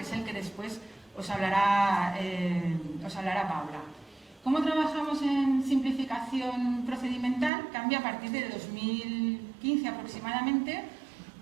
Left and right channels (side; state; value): left; drops out; at 7.5 s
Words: es el que después os hablará Paula. ¿Cómo trabajamos en simplificación procedimental? Cambia a partir de 2015 aproximadamente